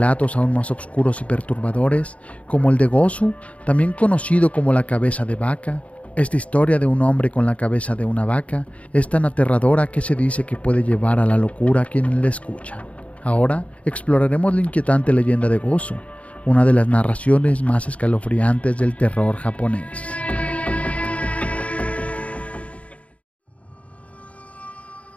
aún más oscuros y perturbadores, como el de Gosu, también conocido como la cabeza de vaca. Esta historia de un hombre con la cabeza de una vaca es tan aterradora que se dice que puede llevar a la locura a quienes la escuchan. Ahora exploraremos la inquietante leyenda de Gosu, una de las narraciones más escalofriantes del terror japonés.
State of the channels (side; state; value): right; late; 0.066 ms